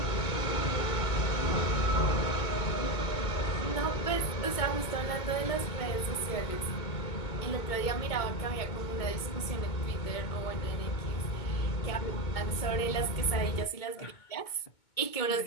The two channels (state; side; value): late; right; 2.2 ms